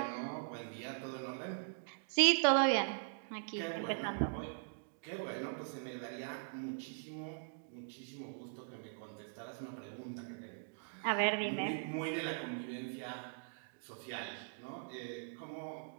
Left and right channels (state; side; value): silent; left; digital silence